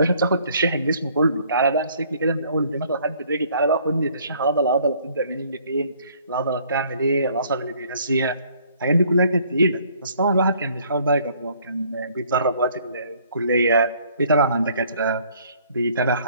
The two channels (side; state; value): both; inverted; correlation -0.61